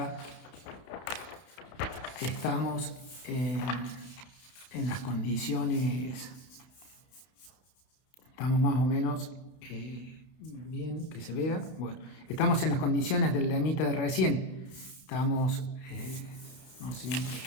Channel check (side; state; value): right; late; 31 ms